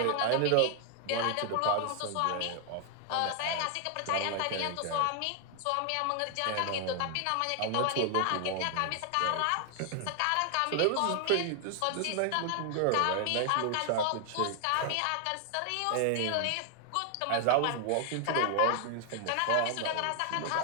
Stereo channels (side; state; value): both; different; correlation 0.00